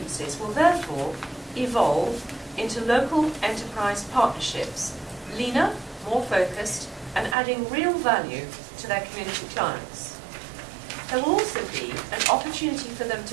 will therefore evolve into local enterprise partnerships, leaner, more focused, and adding real value to their community clients. There will also be an opportunity for them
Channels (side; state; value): left; drops out; at 7.4 s